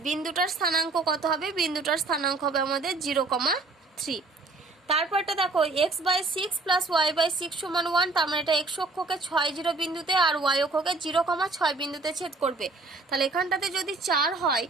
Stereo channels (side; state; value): left; quieter; 3.5 dB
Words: বিন্দুটার স্থানাঙ্ক কত হবে, বিন্দুটার স্থানাঙ্ক হবে আমাদের 0,3। তারপরটা দেখো x by 6 plus y by 6 সমান 1। তার মানে এটা x অক্ষকে 6 0 বিন্দুতে আর y অক্ষকে 0,6 বিন্দুতে ছেদ করবে। তাহলে এখানটাতে যদি 4 হয়